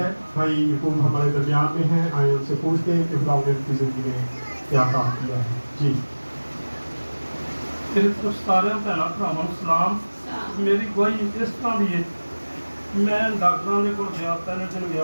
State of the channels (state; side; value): inverted; both; correlation -1.00